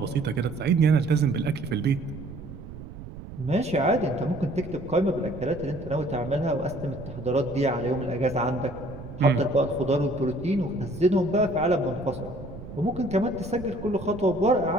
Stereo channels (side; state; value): right; noise; rumble, 13 dB below the sound